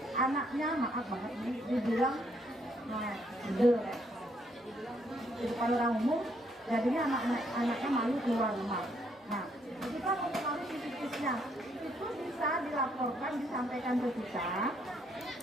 anaknya, maaf banget ini, dibilang di depan orang umum, jadinya anaknya malu keluar rumah. Nah, kita mempengaruhi psikisnya, itu bisa dilaporkan, disampaikan ke kita.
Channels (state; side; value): normal; both; correlation 0.71